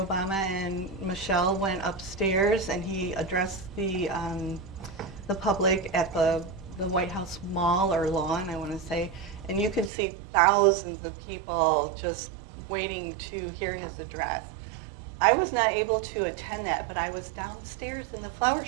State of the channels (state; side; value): drops out; left; at 9.9 s